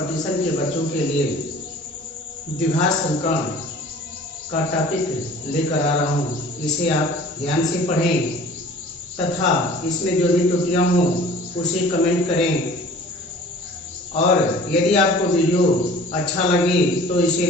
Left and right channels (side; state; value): both; normal; correlation 0.47